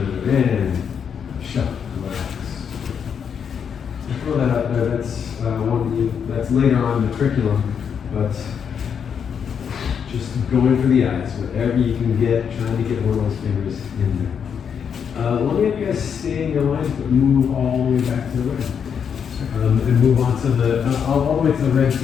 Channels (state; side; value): quieter; right; 7.3 dB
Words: And shut. Relax. Throw that out there. That's that's later on in the curriculum, but just going for the eyes, whatever you can get, trying to get one of those fingers in there. Let me have you guys stay in your lines, but move all the way back to the red. And move on to the, all the way to the red